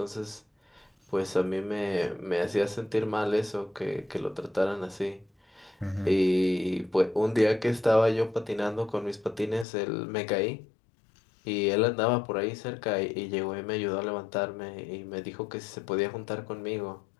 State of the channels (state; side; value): drops out; right; at 9.7 s